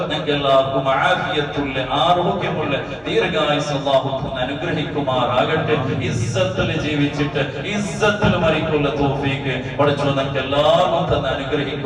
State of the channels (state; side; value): identical; both; correlation 1.00